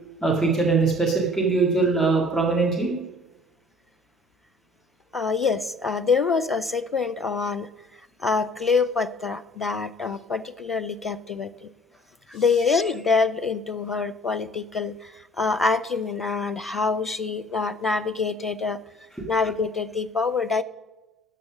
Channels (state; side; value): normal; both; correlation 0.53